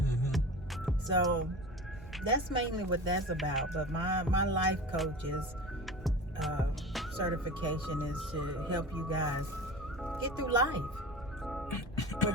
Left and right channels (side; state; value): both; normal; correlation 0.34